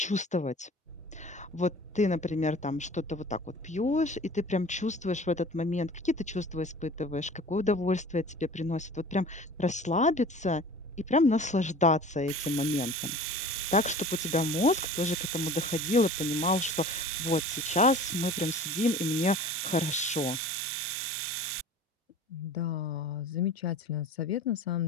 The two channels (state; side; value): normal; both; correlation 0.42